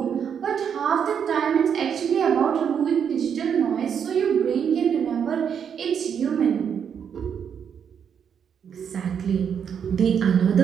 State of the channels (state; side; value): quieter; left; 7.7 dB